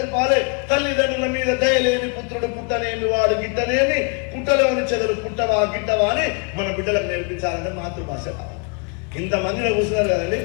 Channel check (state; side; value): quieter; right; 35.2 dB